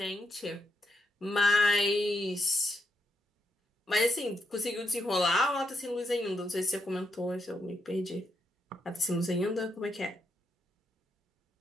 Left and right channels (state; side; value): normal; both; correlation 0.81